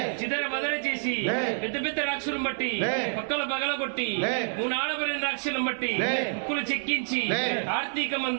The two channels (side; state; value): left; silent; 59 dB below the other